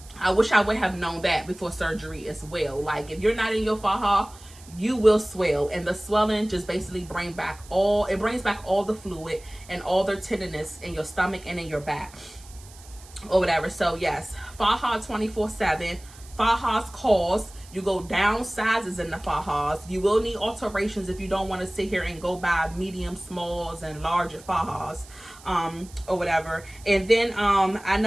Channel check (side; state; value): right; noise; hiss, 21 dB below the sound